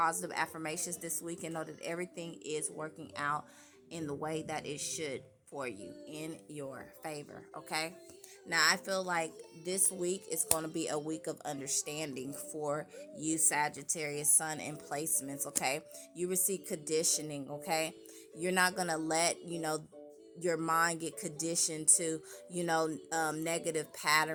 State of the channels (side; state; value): both; identical; correlation 1.00